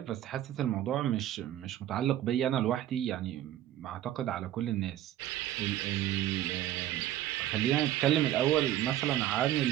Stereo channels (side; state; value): left; quieter; 12.7 dB